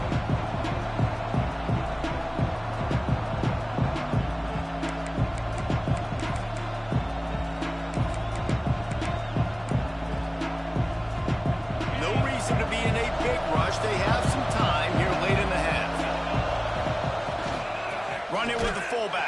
They have some time here late in the half. Run it with the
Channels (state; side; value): identical; both; correlation 1.00